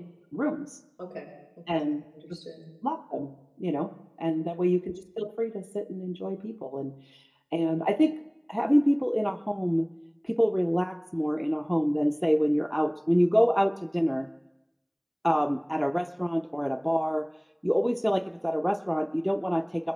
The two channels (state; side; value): identical; both; correlation 1.00